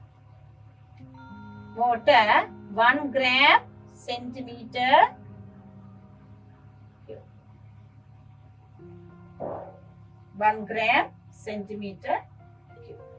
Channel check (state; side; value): identical; both; correlation 1.00